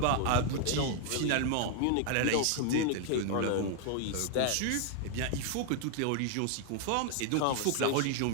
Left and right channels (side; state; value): both; different; correlation 0.00